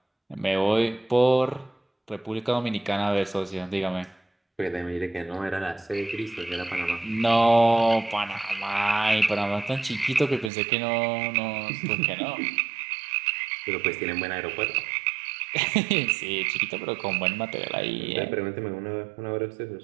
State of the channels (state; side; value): drops out; left; at 10.5 s